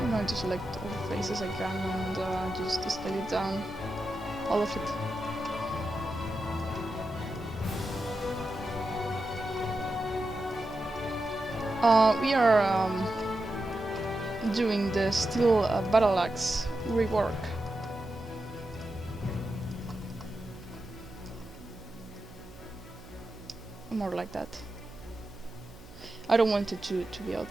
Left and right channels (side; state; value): right; noise; hum, 18 dB below the sound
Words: I'm going to select all the faces I can and just scale it down, all of it. We are doing the still Battleaxe Rework. More like that. I don't want it to be out